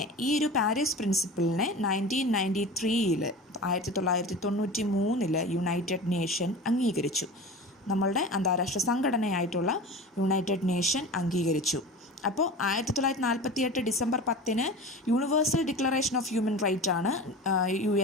ഈ ഒരു പാരീസ് പ്രിൻസിപ്പിളിനെ 1993 1993 യുണൈറ്റഡ് നേഷൻ അംഗീകരിച്ചു. നമ്മളുടെ അന്താരാഷ്ട്ര സംഘടനയായിട്ടുള്ള യുണൈറ്റഡ് നേഷൻ അംഗീകരിച്ചു. അപ്പോൾ 1948 December 10 universal declaration of human right ആണ്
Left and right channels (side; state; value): both; normal; correlation 0.33